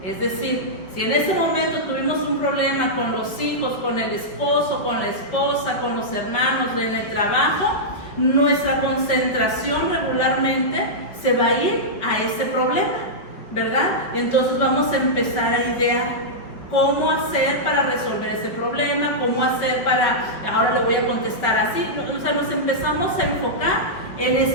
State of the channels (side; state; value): right; late; 5.0 ms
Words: Es decir, si en ese momento tuvimos un problema con los hijos, con el esposo, con la esposa, con los hermanos, en el trabajo, nuestra concentración regularmente se va a ir a ese problema, ¿verdad? Y entonces vamos a empezar a idear cómo hacer para resolver ese problema, cómo hacer ahora le voy a contestar así. O sea, nos empezamos a enfocar en